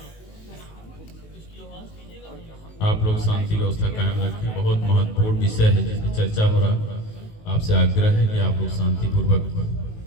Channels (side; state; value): right; late; 19 ms